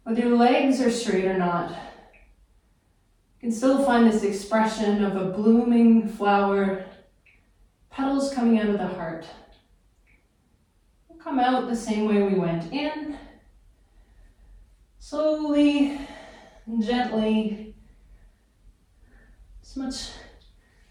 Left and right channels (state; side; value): identical; both; correlation 1.00